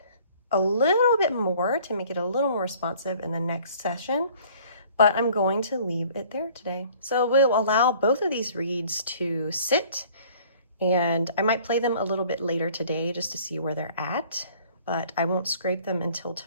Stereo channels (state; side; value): inverted; both; correlation -0.54